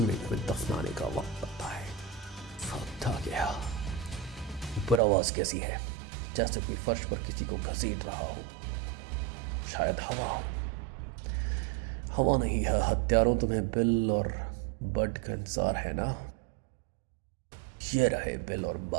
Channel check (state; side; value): drops out; left; at 5.0 s